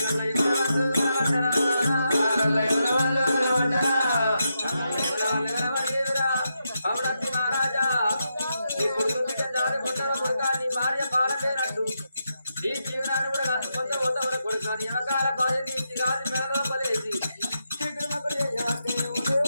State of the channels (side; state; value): both; inverted; correlation -0.84